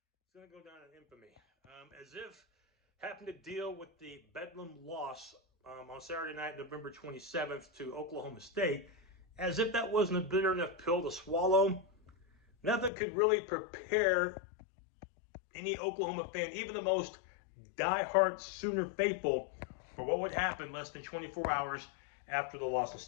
is going to go down in infamy. As if having to deal with the Bedlam loss on Saturday night, November 27th to Oklahoma State, as if that wasn't a bitter enough pill to swallow, nothing could really prepare any Oklahoma fan, even the most diehard Sooner faithful, for what would happen less than 24 hours after the loss in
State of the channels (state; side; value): drops out; right; at 12.9 s